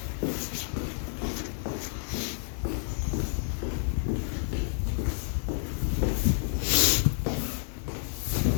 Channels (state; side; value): silent; right; digital silence